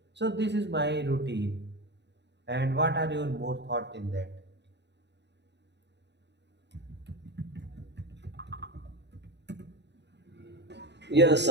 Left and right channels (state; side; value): late; left; 0.50 ms